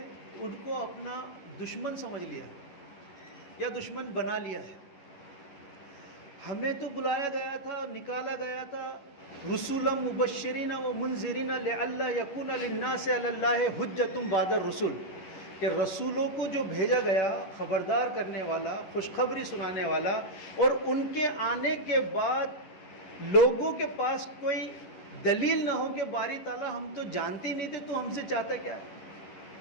ان کو اپنا دشمن سمجھ لیا یا دشمن بنا لیا ہے۔ ہمیں تو بلایا گیا تھا، نکالا گیا تھا، رسولا مبشرین و منذرین لئلا یکون للناس علی اللہ حجۃ بعد الرسل، کہ رسولوں کو جو بھیجا گیا خبردار کرنے والا، خوشخبری سنانے والا، اور ان کے آنے کے بعد لوگوں کے پاس کوئی دلیل نہ ہو کہ باری تعالیٰ ہم تو جانتے ہی نہیں تھے تو ہم سے چاہتا کیا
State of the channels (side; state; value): right; late; 11 ms